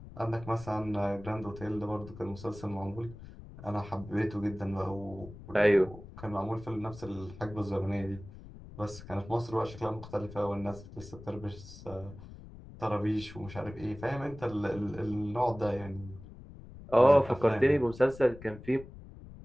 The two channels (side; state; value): left; noise; rumble, 16 dB below the sound